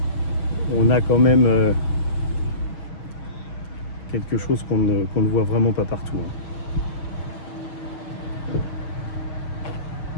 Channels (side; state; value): right; late; 6.2 ms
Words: on a quand même quelque chose qu'on ne voit vraiment pas partout.